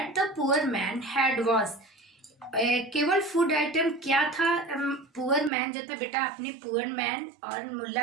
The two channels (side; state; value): left; drops out; at 5.5 s